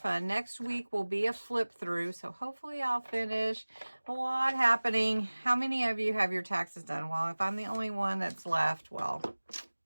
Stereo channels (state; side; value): inverted; both; correlation -1.00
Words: Next week will be a flip through, so hopefully I'll finish. A lot happening. How many of you have your taxes done? Well, if I'm the only one that's left, well,